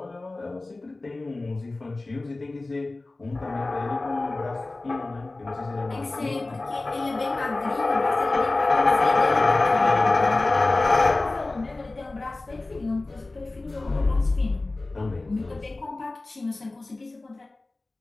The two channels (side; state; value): right; quieter; 3.1 dB